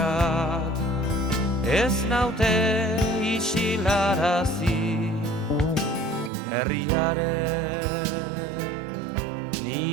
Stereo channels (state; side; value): drops out; left; at 6.3 s